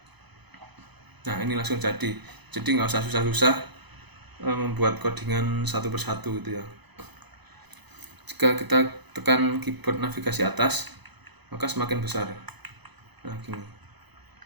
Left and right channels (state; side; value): late; left; 0.99 ms